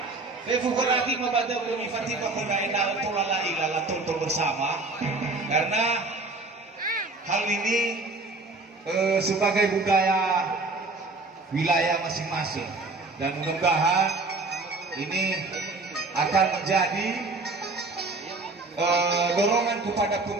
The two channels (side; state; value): left; quieter; 3.4 dB